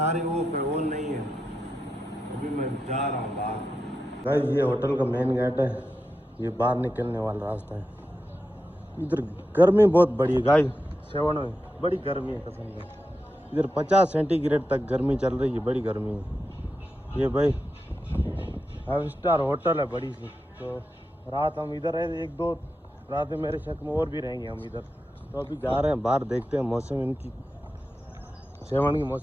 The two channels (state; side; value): normal; both; correlation 0.89